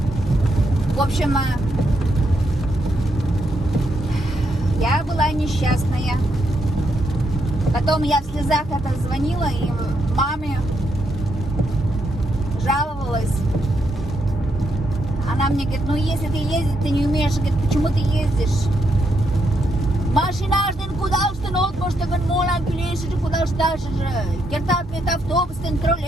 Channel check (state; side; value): normal; both; correlation 0.79